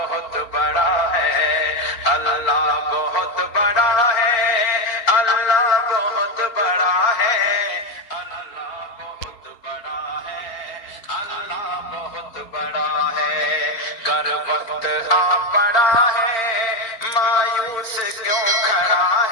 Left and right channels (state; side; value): late; right; 4.3 ms